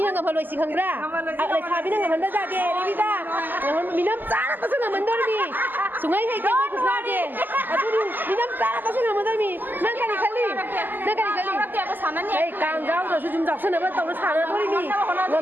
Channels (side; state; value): left; late; 0.089 ms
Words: ngam haloi sing hangra le thabi na ngam da de revita ngam minam tsara ta sunga mandor mi sungai hai ke mai kusna de aduni minam tsara ta sunga mandor mi nang kali ei kang gao do su jum jak sana ba taw na sana dori mi